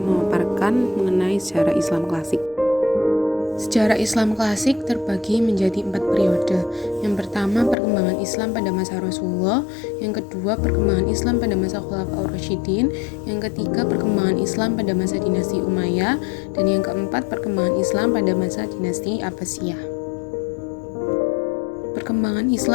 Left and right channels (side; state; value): right; drops out; at 7.8 s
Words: memaparkan mengenai sejarah Islam klasik. Sejarah Islam klasik terbagi menjadi 4 periode. Yang pertama, perkembangan Islam pada masa Rasulullah. Yang kedua, perkembangan Islam pada masa Khulafaur Rasyidin. Yang ketiga, perkembangan Islam pada masa dinasti Umayyah. Dan yang keempat, perkembangan Islam pada masa dinasti Abbasiyah. Perkembangan